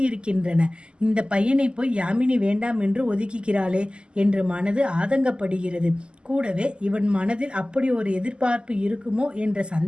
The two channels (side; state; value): left; late; 0.049 ms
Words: இந்த பையனை போய் யாமினி வேண்டாம் என்று ஒதுக்குகிறாளே என்று மனது ஆதங்கப்படுகிறது. கூடவே இவன் மனதில் அப்படி ஒரு எதிர்பார்ப்பு இருக்குமோ என்ற